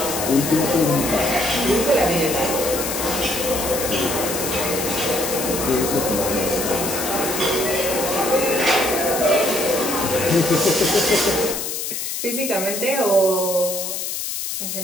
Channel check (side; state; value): left; noise; hiss, 4 dB below the sound